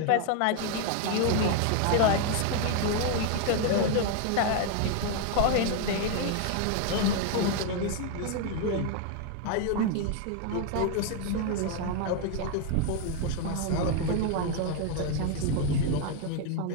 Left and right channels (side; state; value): both; different; correlation 0.01